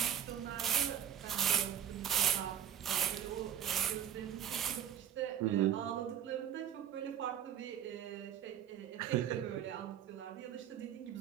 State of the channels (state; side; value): quieter; left; 9.7 dB